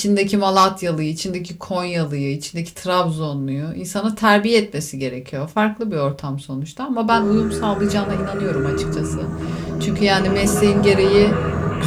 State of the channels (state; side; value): identical; both; correlation 1.00